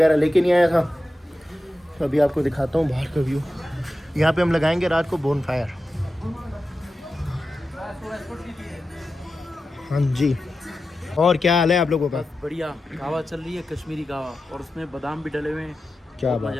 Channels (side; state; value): both; normal; correlation 0.92